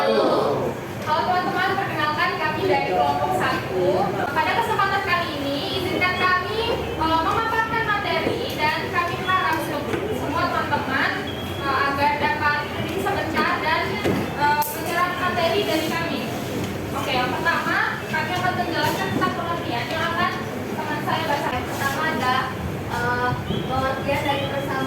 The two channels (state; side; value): identical; both; correlation 1.00